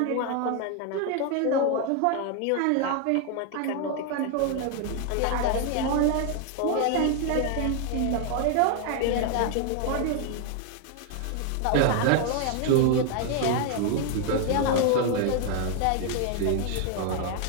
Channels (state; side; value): different; both; correlation 0.00